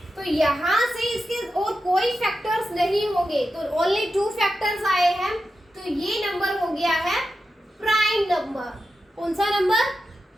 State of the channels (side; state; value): both; normal; correlation 0.90